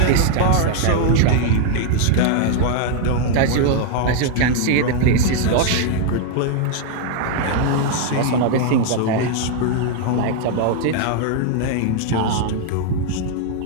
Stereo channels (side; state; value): both; different; correlation 0.00